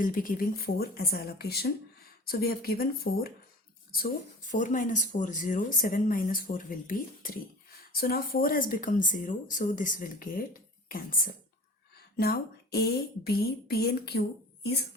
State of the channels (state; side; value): normal; both; correlation 0.39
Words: be giving 4 as allocation. So we have given 4. So 4 minus 4, 0. 7 minus 4 will be 3. So now 4 has become 0. So this will get cancelled. Now A, B, P and Q is